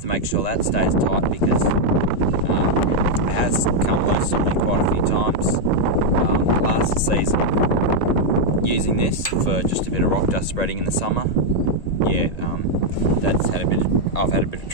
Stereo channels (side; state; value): right; late; 1.8 ms